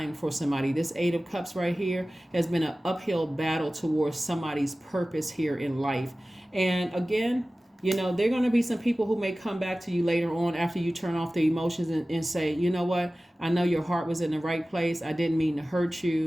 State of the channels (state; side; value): normal; both; correlation 0.97